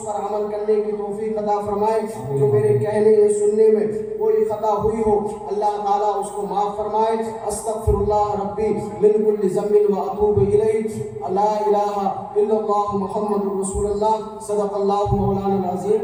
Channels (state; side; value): identical; both; correlation 1.00